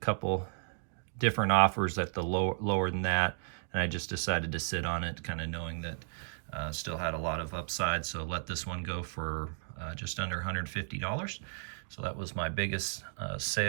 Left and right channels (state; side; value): silent; left; digital silence